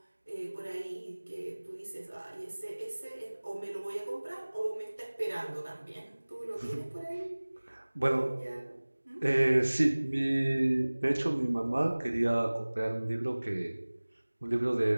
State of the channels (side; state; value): both; inverted; correlation -1.00